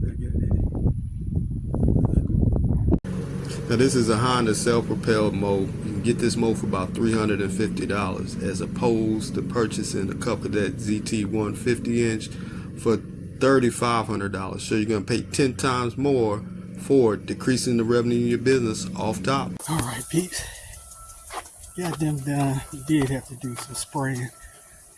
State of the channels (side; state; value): both; identical; correlation 1.00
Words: back at it. Now this is a Honda self-propelled mow. You can get this mow for about $350 as opposed to purchasing a CUB Cadet ZT1 50-inch for $3,500. So you're going to pay 10 times more for decreasing the revenue in your business off top. All right, peeps. Got them done. We did have to do some spraying,